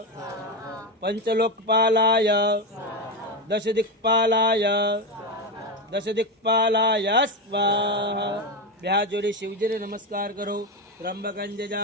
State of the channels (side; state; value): both; normal; correlation 0.13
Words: પંચલોકપાલાય, દશદિક્પાલાય, દશદિક્પાલાય સ્વાહા. બે હાથ જોડી શિવજીને નમસ્કાર કરો. ત્રંબકં